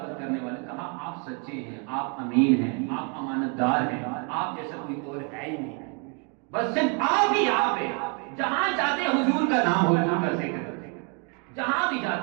کرنے والے، کہا آپ سچے ہیں، آپ امین ہیں، آپ امانت دار ہیں، آپ جیسا کوئی اور ہے ہی نہیں، بس صرف آپ ہی آپ ہیں، جہاں جاتے حضور کا نام، حضور کا ذکر، جہاں بھی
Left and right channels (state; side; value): quieter; left; 36.7 dB